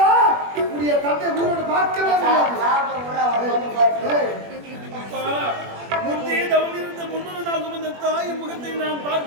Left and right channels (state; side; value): late; left; 21 ms